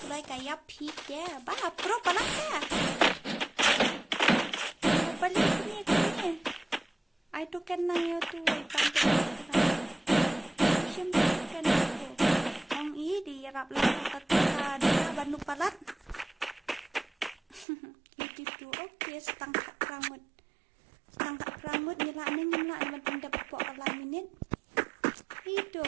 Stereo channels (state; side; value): drops out; left; at 17.7 s